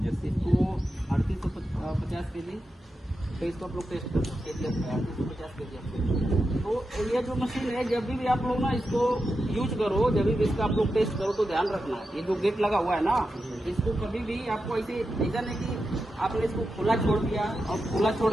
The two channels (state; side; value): normal; both; correlation 0.89